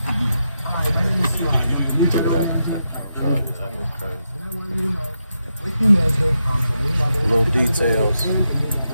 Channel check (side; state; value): both; inverted; correlation -0.85